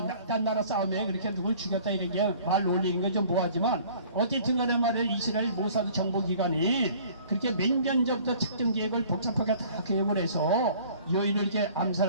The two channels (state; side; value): inverted; both; correlation -0.52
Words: 딴 나라 싸움에 그렇게 누굴 죽였다 이런 게 말 올리는 건 좀 뭐하지만 어쨌든 간에 말이에요, 이스라엘 모사드 정보기관이 그렇게 몇 년 전부터 작전 계획을 복잡하게 다 계획을 해서 요인을 이렇게